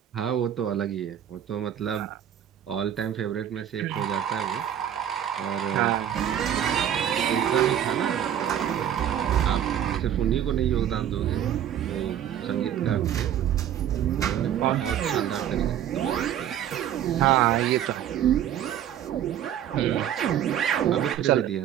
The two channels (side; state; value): left; quieter; 10.3 dB